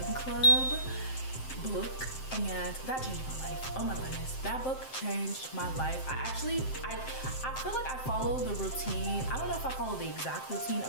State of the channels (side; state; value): right; late; 7.7 ms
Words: Club book, and that changed my life. Oh my goodness, that book changed my life. I feel like I follow the routine. I don't know if I follow the exact routine